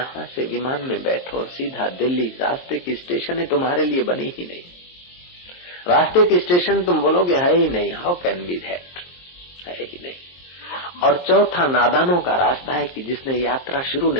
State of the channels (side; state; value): right; late; 23 ms